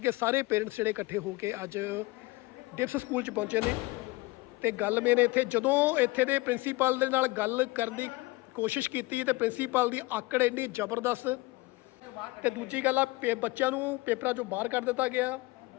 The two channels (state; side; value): quieter; right; 22.4 dB